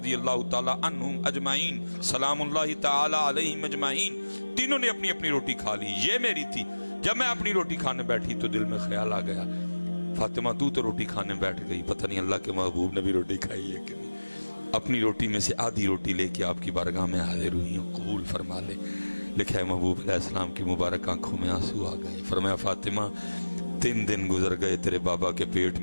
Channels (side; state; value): both; inverted; correlation -1.00